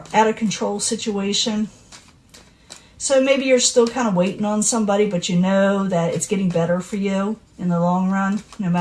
out of control situation. So maybe you're still kind of waiting on somebody, but you know that it's getting better for you in the long run, no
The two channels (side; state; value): both; identical; correlation 1.00